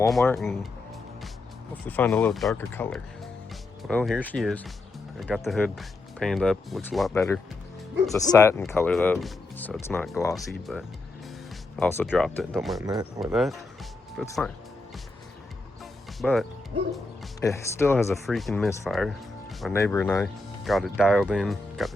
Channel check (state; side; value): quieter; right; 3.1 dB